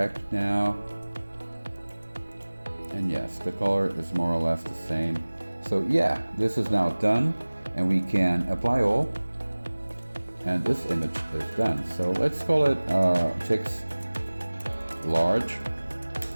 now, and yes, the color is more or less the same. So yeah, this is now done, and we can apply all, and this image is done. So let's call it text large,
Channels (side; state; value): both; inverted; correlation -1.00